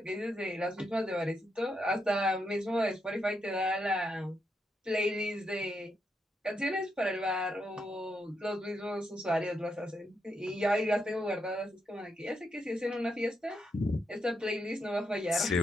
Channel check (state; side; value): normal; both; correlation 0.81